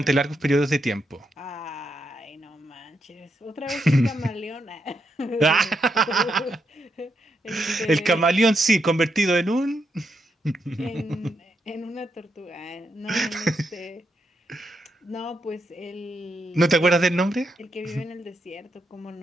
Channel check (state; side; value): normal; both; correlation 0.81